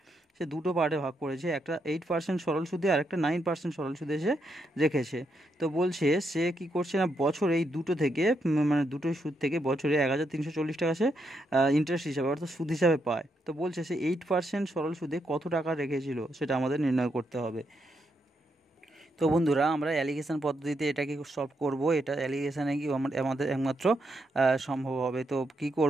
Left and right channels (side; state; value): both; normal; correlation 0.80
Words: সে দুটো পার্টে ভাগ করেছে, একটা 8% সরল সুদে আর একটা 9% সরল সুদে সে রেখেছে। তো বলছে সে কি করছে না, বছর এই দুটো থেকে মানে দুটোই সুদ থেকে বছরে 1340 টাকা সে ইন্টারেস্ট হিসাবে অর্থাৎ সুদ হিসাবে পায়। তো বলছে সে 8% সরল সুদে কত টাকা রেখেছিল সেটা আমাদের নির্ণয় করতে হবে। তো বন্ধুরা, আমরা অ্যালিগেশন পদ্ধতিতে এটাকে সলভ করব। এটা অ্যালিগেশনে কি আমাদের একমাত্র সম্ভব হবে। তো কি